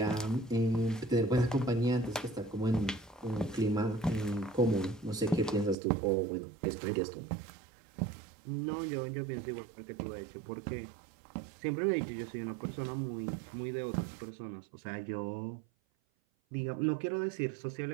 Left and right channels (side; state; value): left; drops out; at 5.8 s